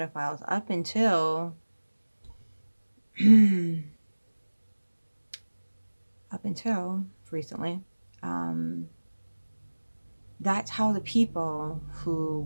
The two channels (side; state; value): both; inverted; correlation -1.00